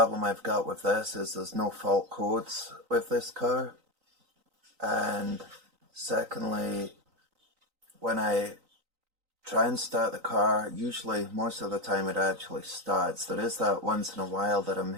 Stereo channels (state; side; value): late; left; 3.9 ms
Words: I've got with this is there's no fault codes with this car, and secondly, when I try and start the car, usually most of the time it actually starts. There is that once in a while that I'm